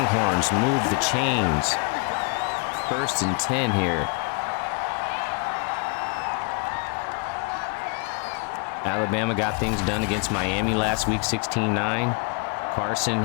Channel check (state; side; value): quieter; right; 35.9 dB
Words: move the chains. 1st and 10 here. Alabama got things done against Miami last week, 16-9. Carson